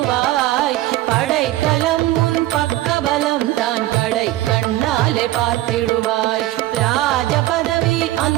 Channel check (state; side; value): quieter; left; 15.8 dB